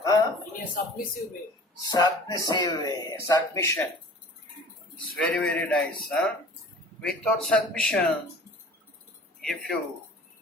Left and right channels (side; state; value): both; normal; correlation 0.45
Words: In a submissive way. Submissive way, submission. It's very, very nice. Without submission, if you